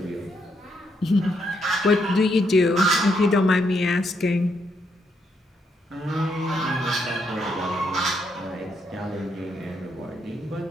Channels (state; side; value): normal; both; correlation 0.77